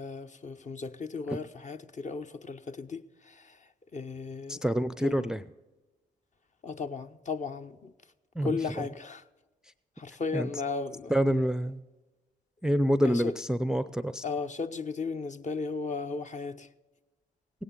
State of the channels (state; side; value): normal; both; correlation 0.82